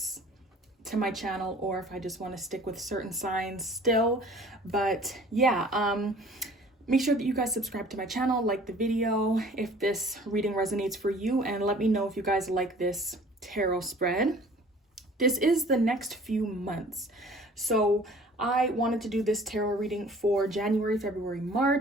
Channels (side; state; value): both; normal; correlation 0.50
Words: to my channel or if I just want to stick with certain signs still. But yeah, make sure that you guys subscribe to my channel, like the video if this reading resonates for you, and let me know if you guys like this tarot spread. This is the next few months. So I wanted to do this tarot reading for January, February,